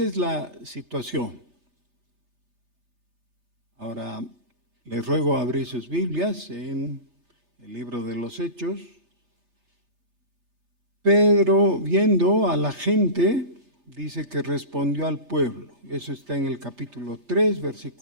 es la situación. Ahora, les ruego abrir sus Biblias en el libro de los Hechos. Pedro, viendo a la gente, dice que respondió al pueblo. Eso está en el capítulo 3,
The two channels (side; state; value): left; late; 8.3 ms